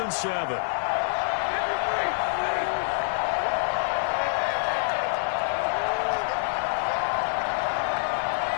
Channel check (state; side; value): silent; right; digital silence